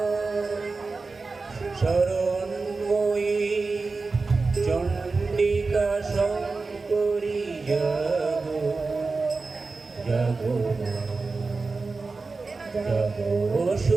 শরণময়ী চণ্ডিকা শঙ্করী, জাগো জাগো মা, জাগো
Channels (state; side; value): quieter; left; 4.0 dB